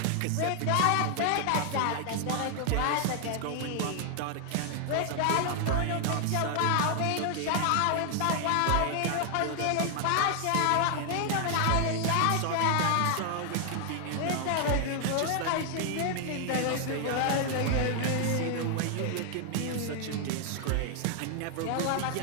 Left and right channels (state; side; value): different; both; correlation 0.00